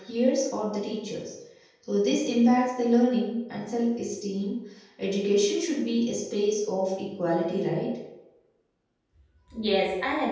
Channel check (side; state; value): both; identical; correlation 1.00